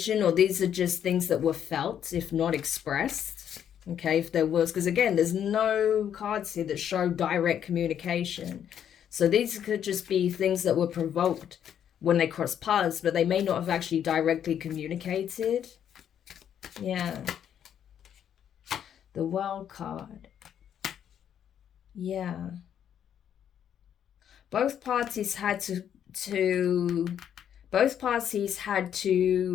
or these are just things that were felt, if not expressed. Okay, if there was, because again, there's no cards here that show direct communication. So these could just be things that were provoked when they cross paths, but they may not have actually directly communicated. Yeah. The World card. Yeah. Both parties had to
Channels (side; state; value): right; quieter; 9.3 dB